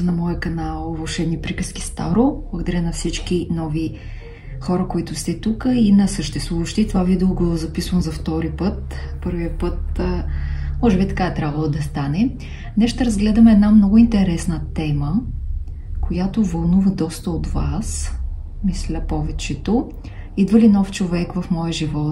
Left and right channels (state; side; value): identical; both; correlation 1.00